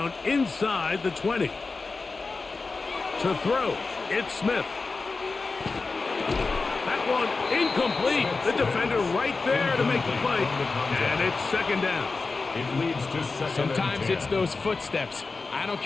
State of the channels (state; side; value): quieter; right; 4.0 dB